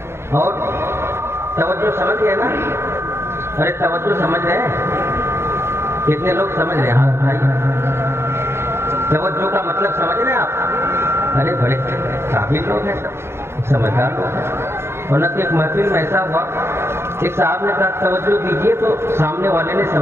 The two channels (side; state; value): left; late; 0.12 ms